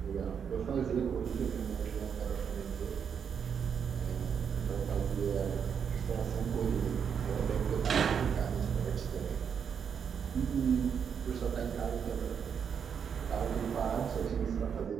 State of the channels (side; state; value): left; quieter; 7.2 dB